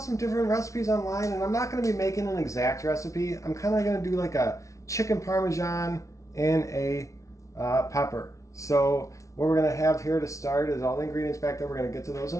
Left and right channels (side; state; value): right; late; 0.15 ms